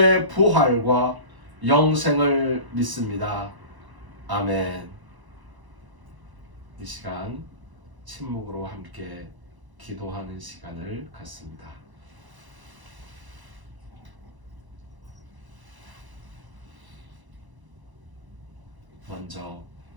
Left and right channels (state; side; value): late; left; 1.0 ms